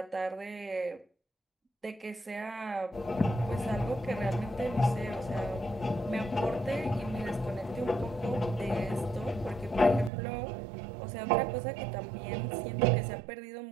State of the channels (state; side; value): drops out; left; at 10.1 s